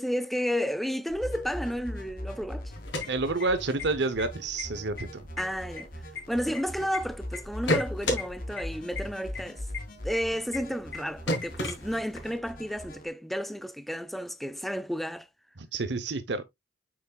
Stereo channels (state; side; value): normal; both; correlation 0.63